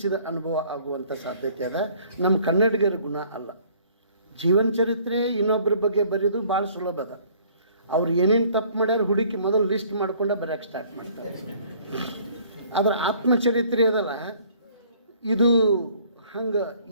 ಅನುಭವ ಆಗುವಂಥ ಸಾಧ್ಯತೆ ಅದ. ನಮ್ಮ ಕನ್ನಡಿಗರ ಗುಣ ಅಲ್ಲ. ಜೀವನ ಚರಿತ್ರೆ ಇನ್ನೊಬ್ಬರ ಬಗ್ಗೆ ಬರೆಯೋದು ಭಾಳ ಸುಲಭ ಅದ. ಅವ್ರು ಏನೇನು ತಪ್ಪು ಮಾಡ್ಯಾರ ಹುಡುಕಿ ಮೊದಲು ಲಿಸ್ಟ್ ಮಾಡ್ಕೊಂಡೆ ಬರೆಯೋಕ್ಕೆ ಸ್ಟಾರ್ಟ್ ಮಾಡ್ತಾರೆ. ಅದರ ಆತ್ಮಚರಿತ್ರೆ ಅದಲ್ಲ, ಇದು ಹಂಗೆ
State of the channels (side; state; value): both; inverted; correlation -0.57